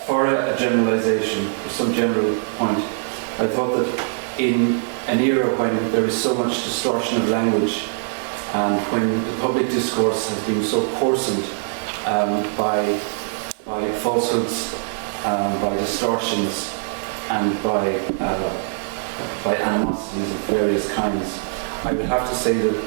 a generalisation, for some general point, I thought that in an era when there is so much distortion of language and when the public discourse has been so coarsened by falsehoods, by distortions, and by animosities of various kinds, I would have to say that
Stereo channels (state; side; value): silent; left; digital silence